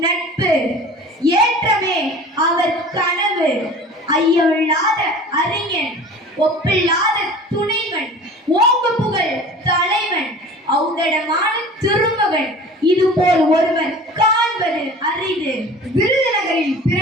நட்பு, ஏற்றமே அவர் கனவு, ஐயமில்லாத அறிஞன், ஒப்பில்லாத துணைவன், ஓங்கு புகழ் தலைவன், ஔதடமான திருமகன், இதுபோல் ஒருவர் காண்பது அரிது. விருதுநகரில்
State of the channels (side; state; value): both; normal; correlation 0.41